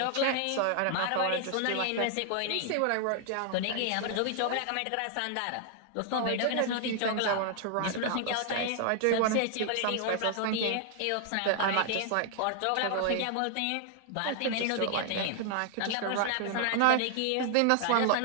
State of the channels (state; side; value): different; both; correlation 0.00